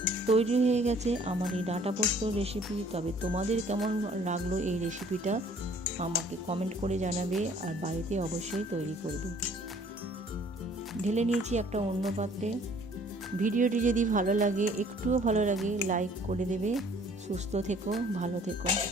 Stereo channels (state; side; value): normal; both; correlation 0.57